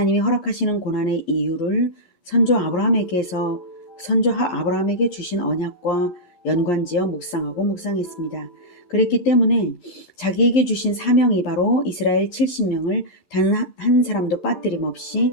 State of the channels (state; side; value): late; right; 15 ms